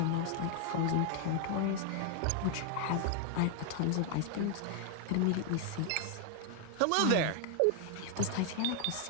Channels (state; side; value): different; both; correlation 0.00